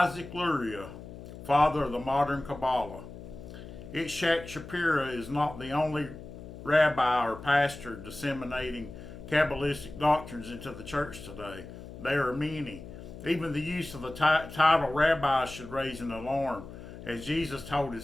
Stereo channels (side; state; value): left; noise; hum, 13 dB below the sound